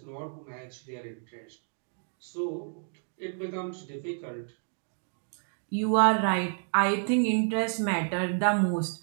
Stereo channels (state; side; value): silent; left; 55 dB below the other